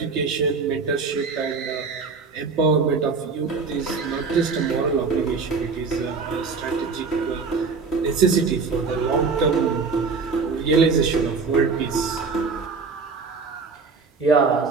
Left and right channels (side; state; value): left; quieter; 4.7 dB